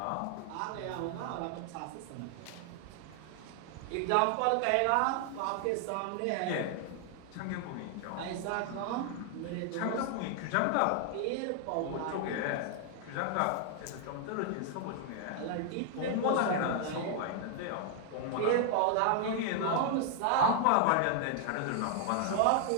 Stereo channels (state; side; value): different; both; correlation 0.00